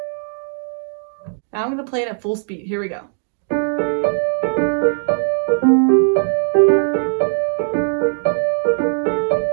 Now I'm going to play it at full speed. Here we go.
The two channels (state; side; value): silent; left; digital silence